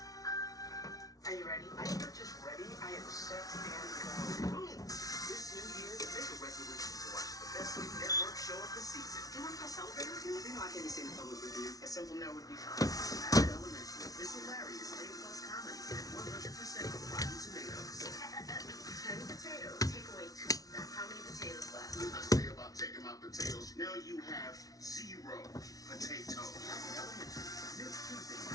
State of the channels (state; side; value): late; right; 0.18 ms